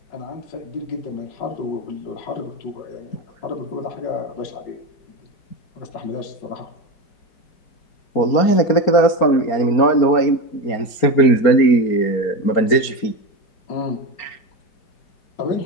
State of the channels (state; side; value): late; right; 4.3 ms